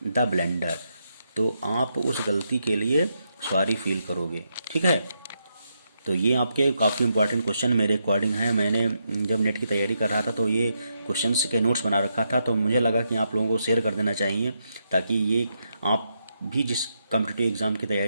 the blender. तो आप उस गलती के लिए सॉरी फील करोगे, ठीक है। तो ये आपके काफ़ी इंपॉर्टेंट क्वेश्चन मेरे अकॉर्डिंग है। मैंने जब नेट की तैयारी कर रहा था तो ये क्वेश्चंस के नोट्स बना रखा था, तो मुझे लगा कि आप लोगों को शेयर कर देना चाहिए ताकि ये आप भी जिस कॉम्पिटिटिव एग्ज़ाम की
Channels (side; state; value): both; inverted; correlation -0.81